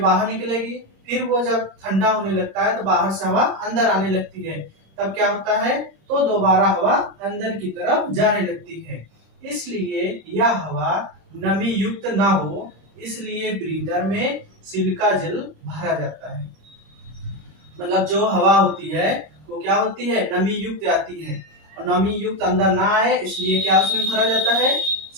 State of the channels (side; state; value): left; late; 25 ms